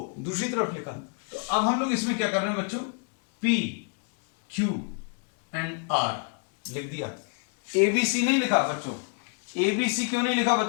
दूसरी तरफ लिखा, तो अब हम लोग इसमें क्या कर रहे हैं बच्चों, p q एंड r लिख दिया, abc नहीं लिखा बच्चों, abc क्यों नहीं लिखा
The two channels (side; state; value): right; quieter; 36.4 dB